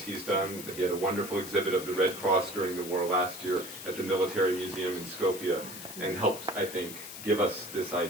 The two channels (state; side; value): noise; left; hiss, 11 dB below the sound